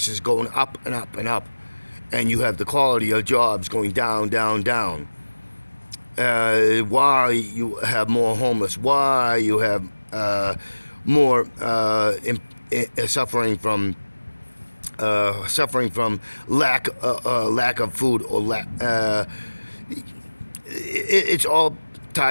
going up and up and up, and you have the quality of jobs going down, down, down. Why you have more homeless? Why you have more suffering from lack of food or it's all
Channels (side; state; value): both; inverted; correlation -1.00